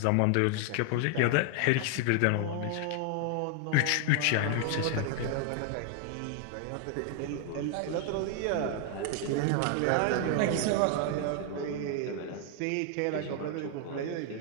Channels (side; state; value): both; different; correlation 0.00